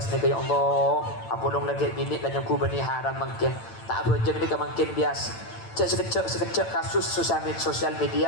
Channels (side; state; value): right; late; 8.9 ms